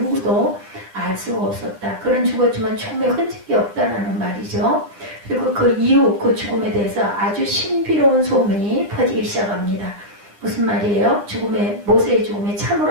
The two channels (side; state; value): left; late; 10 ms